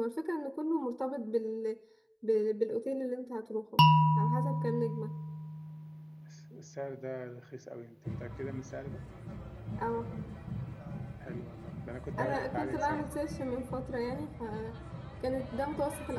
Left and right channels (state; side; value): identical; both; correlation 1.00